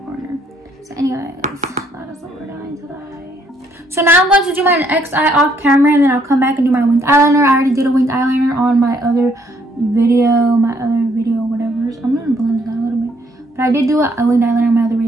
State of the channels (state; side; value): normal; both; correlation 0.68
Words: So anyways, that is what we're doing today. So now I'm going to do my next eye off camera, and then I'll come back and do my winged eyeliner. I already did a winged eyeliner on my other video, whatever. I'm going to blend it out a little bit. But I did do a winged eyeliner on my other